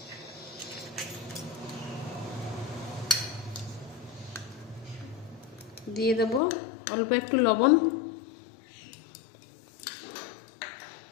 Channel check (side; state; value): right; drops out; at 6.4 s